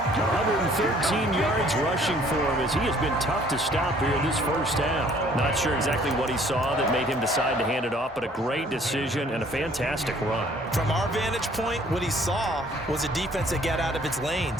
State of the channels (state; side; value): normal; both; correlation 0.58